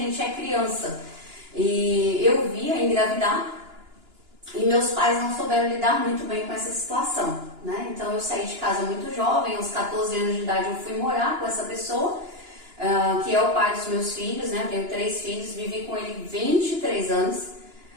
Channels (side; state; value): left; late; 2.9 ms